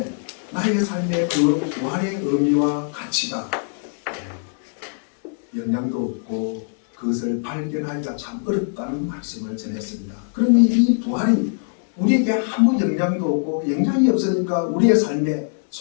나의 삶의 그 부활의 의미와 가치가 영향도 없고 그것을 발견하기가 참 어렵다는 말씀을 전했습니다. 그러니 이 부활이 우리에게 아무 영향도 없고 영향이 없으니까 우리의 삶에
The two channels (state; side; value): silent; right; digital silence